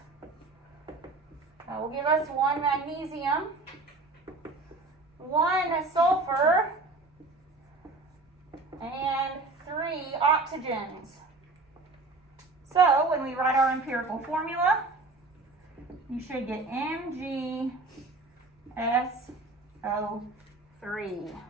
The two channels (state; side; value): quieter; left; 3.4 dB